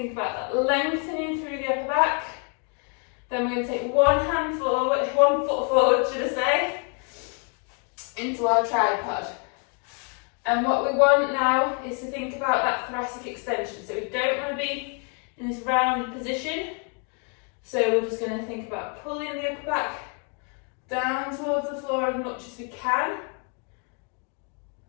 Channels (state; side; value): quieter; right; 38.7 dB